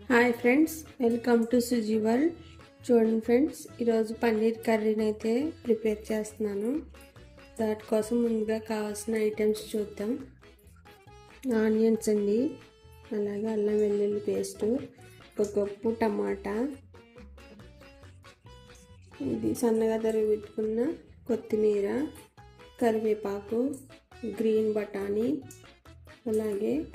Hi friends, welcome to Suji world. చూడండి friends, ఈరోజు పన్నీర్ కర్రీని అయితే ప్రిపేర్ చేస్తున్నాను. దానికోసం ముందుగా కావాల్సిన ఐటమ్స్ చూద్దాం. ఆనియన్స్ అండి, అలాగే అల్లం వెల్లుల్లి పేస్టు, ఒక కప్పు టమాటా, ఇది సన్నగా తరిగి పెట్టుకున్న కొత్తిమీర, కరివేపాకు, గ్రీన్ బఠానీ, అలాగే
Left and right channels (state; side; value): identical; both; correlation 1.00